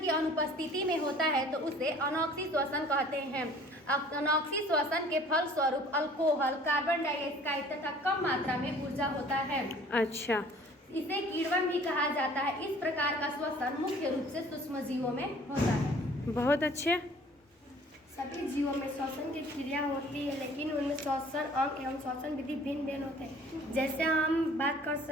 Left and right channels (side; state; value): both; normal; correlation 0.52